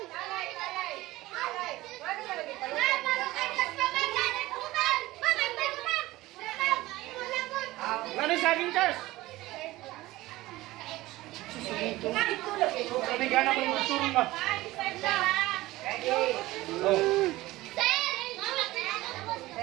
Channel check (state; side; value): quieter; left; 18.1 dB